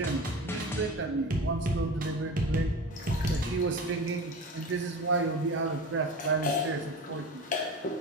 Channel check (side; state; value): both; normal; correlation 0.31